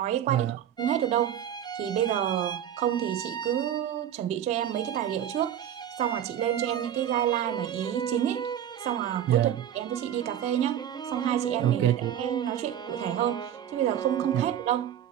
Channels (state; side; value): quieter; left; 10.3 dB